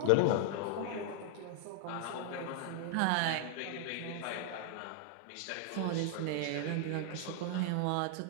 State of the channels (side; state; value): both; different; correlation 0.00